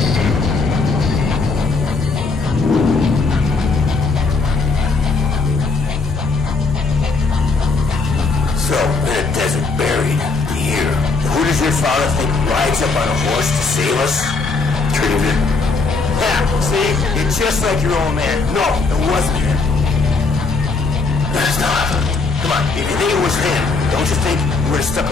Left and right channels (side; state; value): right; quieter; 4.1 dB